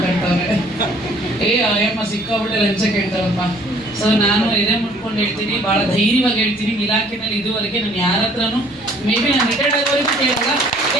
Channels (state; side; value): noise; right; rumble, 28 dB below the sound